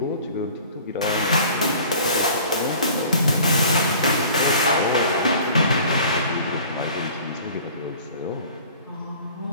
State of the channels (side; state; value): both; inverted; correlation -0.47